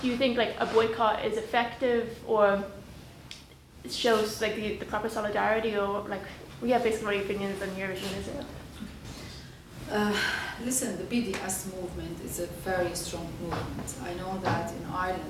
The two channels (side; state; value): both; identical; correlation 1.00